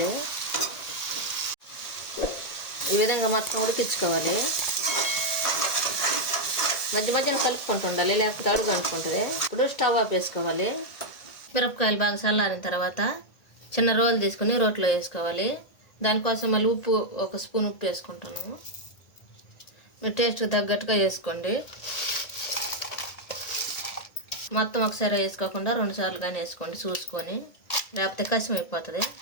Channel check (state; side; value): late; right; 1.9 ms